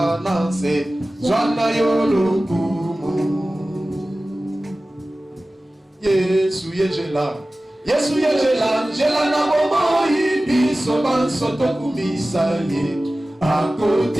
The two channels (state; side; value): normal; both; correlation 0.96